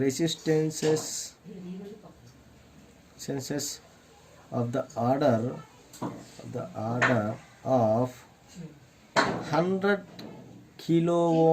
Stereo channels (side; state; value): both; identical; correlation 1.00